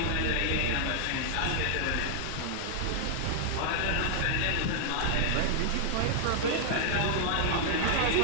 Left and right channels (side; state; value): both; different; correlation 0.00